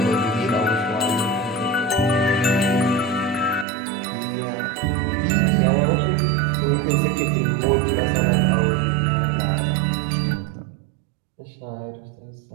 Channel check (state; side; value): drops out; left; at 3.7 s